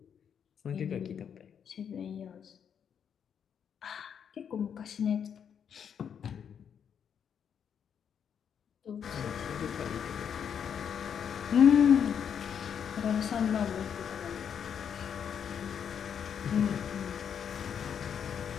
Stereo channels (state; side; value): quieter; right; 7.9 dB